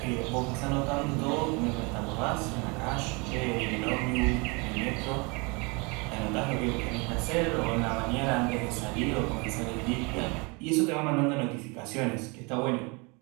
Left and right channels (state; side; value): quieter; left; 29.4 dB